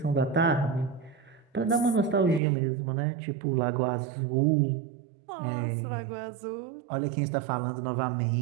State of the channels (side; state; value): left; drops out; at 2.4 s